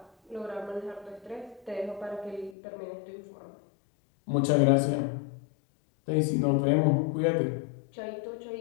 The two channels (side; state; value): right; drops out; at 2.6 s